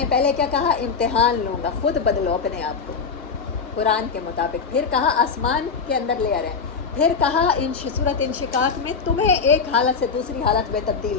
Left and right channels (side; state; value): right; quieter; 5.4 dB